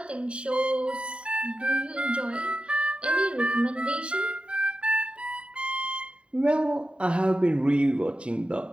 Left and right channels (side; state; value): left; late; 0.057 ms